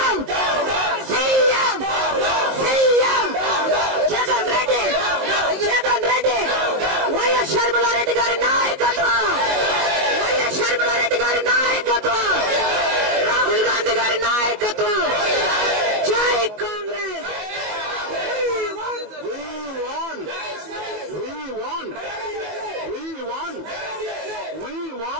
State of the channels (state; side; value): late; left; 21 ms